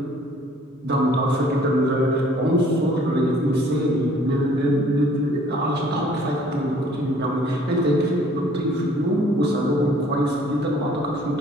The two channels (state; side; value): normal; both; correlation 0.57